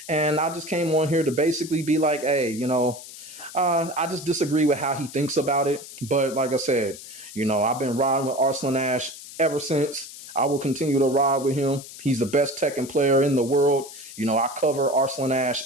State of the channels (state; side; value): noise; left; hiss, 15 dB below the sound